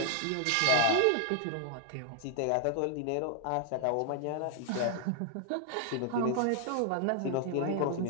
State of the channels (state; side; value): different; both; correlation 0.00